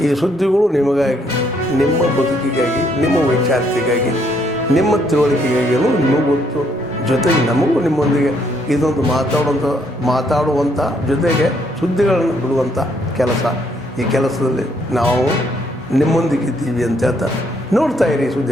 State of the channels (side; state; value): both; normal; correlation 0.70